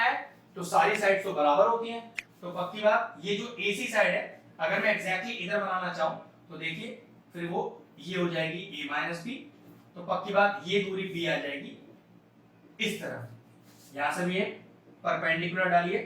है तो सारी साइड्स तो बराबर होती हैं, तो पक्की बात ये जो AC साइड है अगर मैं एग्जैक्टली इधर बनाना चाहूं तो देखिए फिर वो ये हो जाएगी a माइनस बी, तो पक्की बात ये दूरी b आ जाएगी इस तरफ। यहां से भी एक परपेंडिकुलर डालिए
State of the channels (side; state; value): both; identical; correlation 1.00